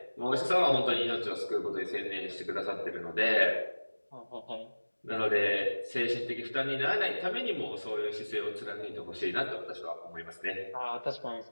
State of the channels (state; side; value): inverted; both; correlation -1.00